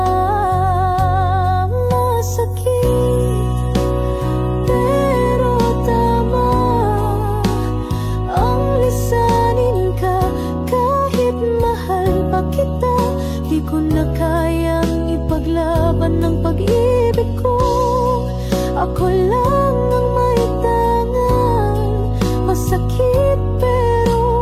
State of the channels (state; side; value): identical; both; correlation 1.00